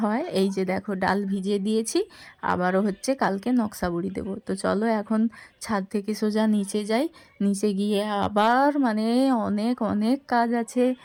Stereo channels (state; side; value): identical; both; correlation 1.00